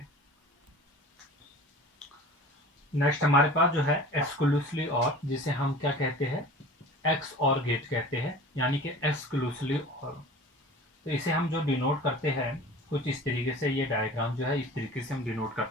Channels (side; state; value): both; normal; correlation 0.40